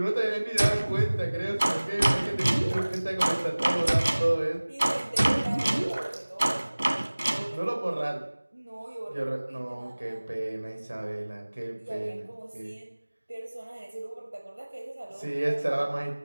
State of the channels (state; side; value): inverted; both; correlation -1.00